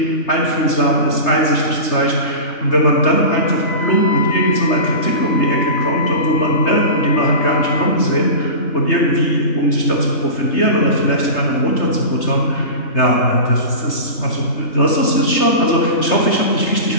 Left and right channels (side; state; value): right; late; 3.3 ms